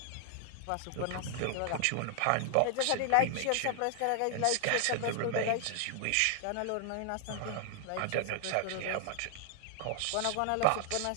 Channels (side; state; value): both; different; correlation 0.00